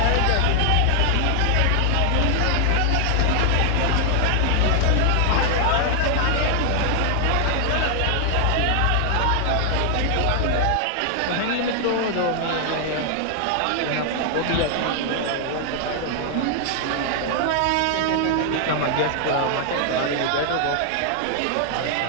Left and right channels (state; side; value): different; both; correlation 0.00